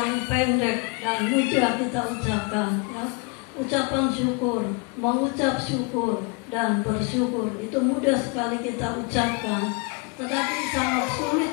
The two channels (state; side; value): quieter; right; 29.8 dB